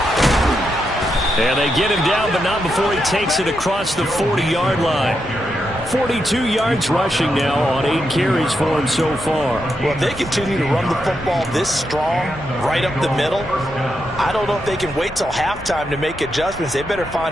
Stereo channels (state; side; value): normal; both; correlation 0.84